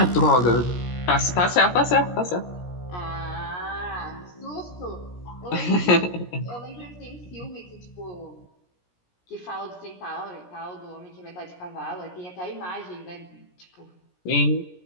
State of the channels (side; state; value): right; late; 17 ms